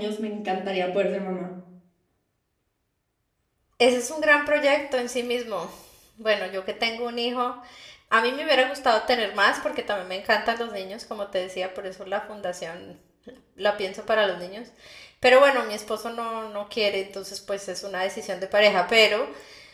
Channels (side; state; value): both; identical; correlation 1.00